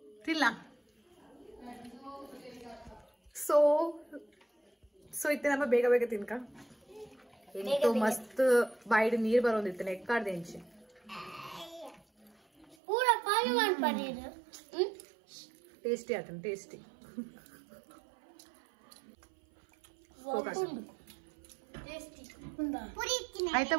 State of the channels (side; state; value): left; drops out; at 12.8 s